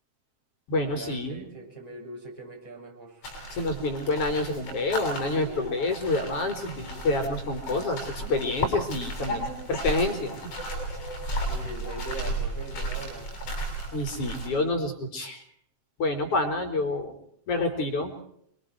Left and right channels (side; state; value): right; late; 7.6 ms